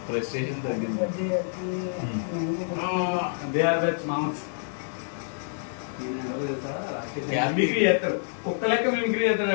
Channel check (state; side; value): silent; right; digital silence